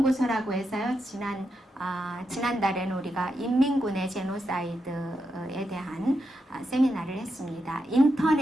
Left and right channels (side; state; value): both; normal; correlation 0.85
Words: 해서요. 지난달에는 우리가 인민군의 제노사이드에 대한 세미나를 했습니다.